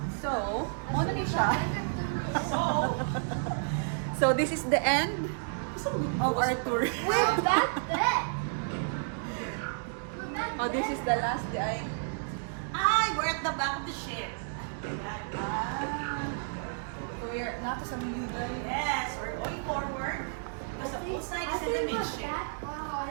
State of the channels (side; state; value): left; silent; digital silence